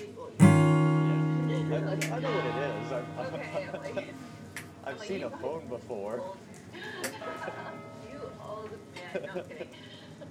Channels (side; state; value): both; identical; correlation 1.00